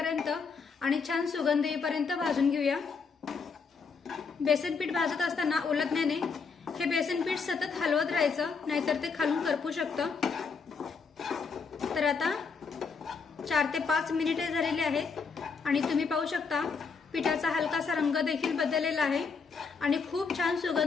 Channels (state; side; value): quieter; right; 5.2 dB